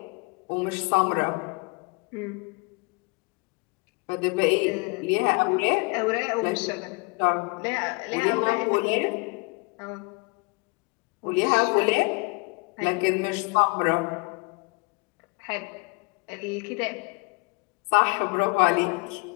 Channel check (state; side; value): quieter; right; 30.0 dB